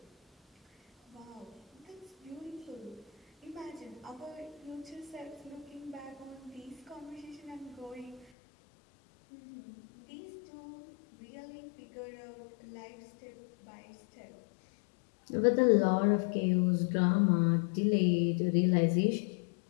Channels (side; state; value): right; drops out; at 8.3 s